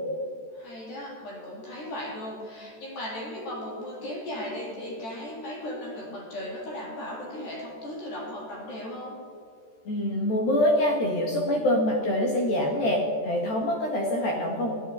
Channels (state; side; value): late; right; 13 ms